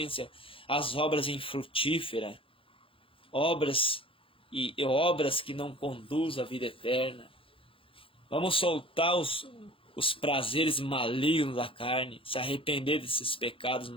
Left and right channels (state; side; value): late; right; 0.26 ms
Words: às obras infrutíferas, obras que não conduzem à vida eterna. Vamos soltar os prazeres malignos da carne, se arrepender desses pecados